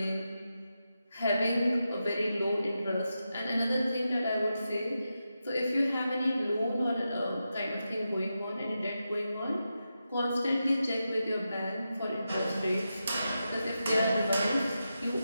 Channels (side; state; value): both; inverted; correlation -0.89